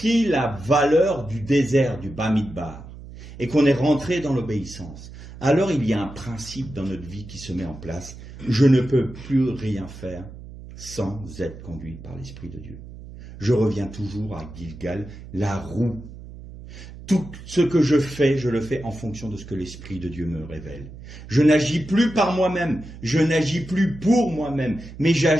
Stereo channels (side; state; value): right; noise; hum, 15 dB below the sound